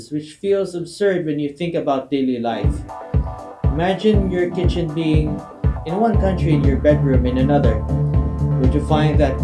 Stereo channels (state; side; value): identical; both; correlation 1.00